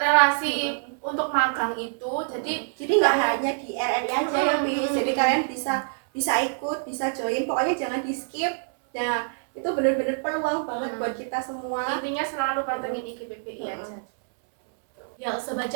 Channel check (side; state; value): left; silent; 61 dB below the other